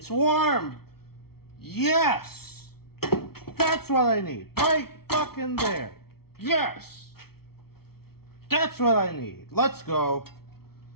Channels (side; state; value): right; late; 0.95 ms